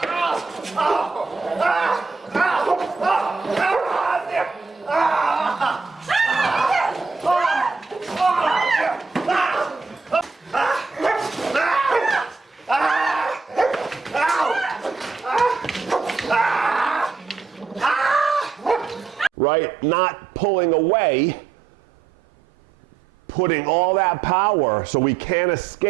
Right? Not pulling away, putting all that power so we can't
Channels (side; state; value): left; quieter; 4.8 dB